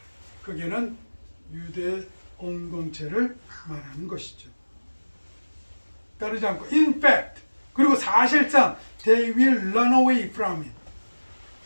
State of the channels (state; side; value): inverted; both; correlation -1.00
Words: 그게는 유대 공동체를 말하는 것이죠. 따르지 않고, in fact, 그리고 사실상 they will run away from it.